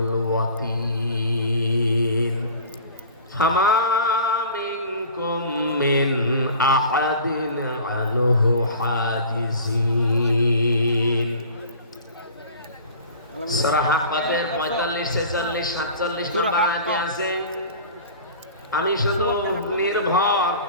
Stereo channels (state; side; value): inverted; both; correlation -0.41